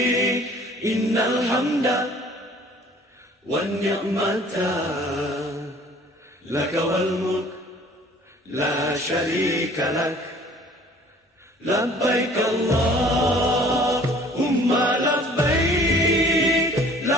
إن الحمد والنعمة لك والملك لا شريك لك لبيك اللهم لبيك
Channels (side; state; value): both; normal; correlation 0.52